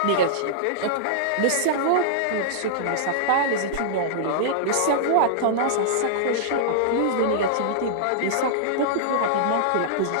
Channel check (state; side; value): different; both; correlation -0.02